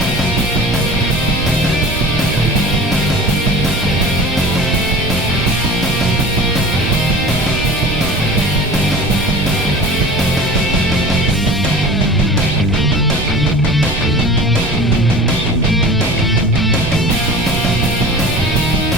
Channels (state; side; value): noise; right; rumble, 7 dB below the sound